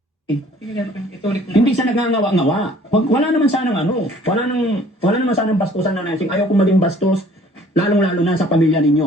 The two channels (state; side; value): normal; both; correlation 0.55